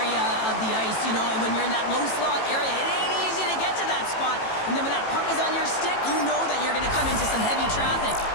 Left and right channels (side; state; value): right; late; 18 ms